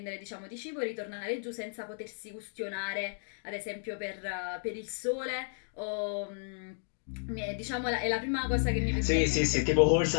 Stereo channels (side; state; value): right; silent; digital silence